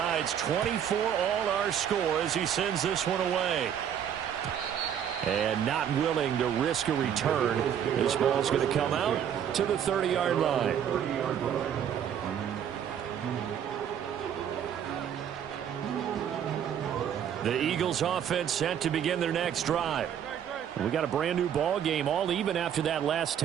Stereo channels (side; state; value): left; quieter; 9.1 dB